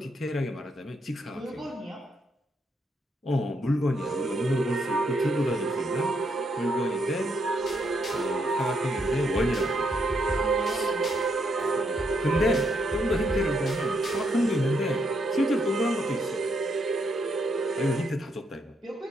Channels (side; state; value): both; normal; correlation 0.76